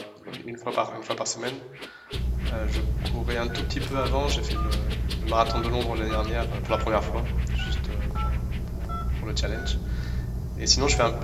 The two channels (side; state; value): both; identical; correlation 1.00